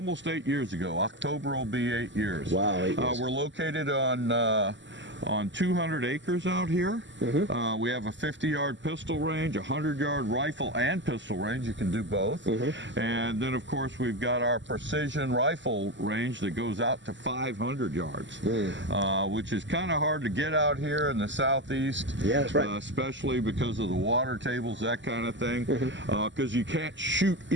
8 years ago. October will be 8 years. Wow, 8 years. We're located on 200 acres out here. We have a 50-yard pistol range, a 100-yard rifle and pistol range. You can do both. And then, of course, we've got our precision rifle range that goes out to 500 yards, which is kind of hard to get out here in the Southeast. Yeah, that's right. Especially because of the water tables, that kind of thing, because you can't shoot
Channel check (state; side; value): late; left; 0.54 ms